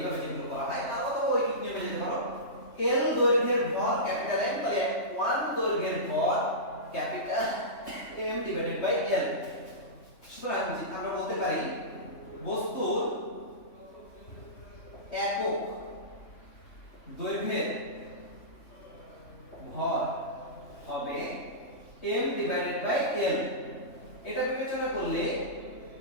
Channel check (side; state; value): right; late; 3.2 ms